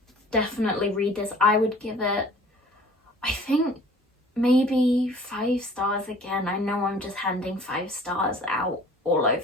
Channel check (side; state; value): both; normal; correlation 0.49